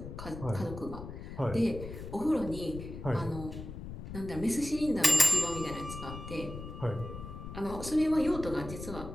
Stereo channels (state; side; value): noise; left; rumble, 10 dB below the sound